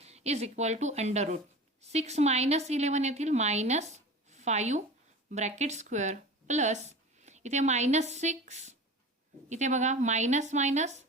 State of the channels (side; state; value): both; normal; correlation 0.35